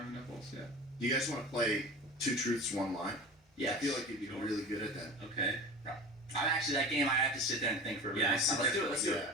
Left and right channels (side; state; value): both; normal; correlation 0.34